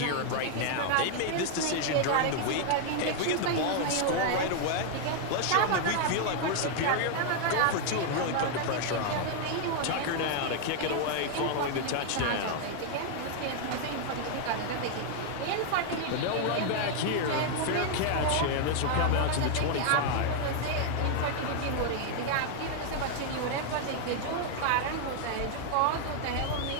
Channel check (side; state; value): both; different; correlation 0.00